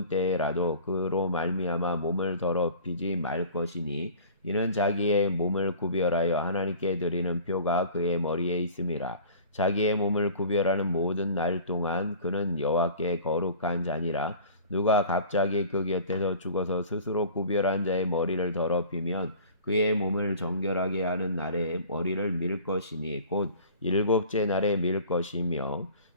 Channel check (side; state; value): both; inverted; correlation -0.44